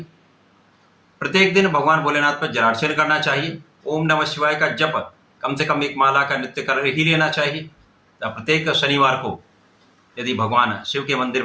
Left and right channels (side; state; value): both; identical; correlation 1.00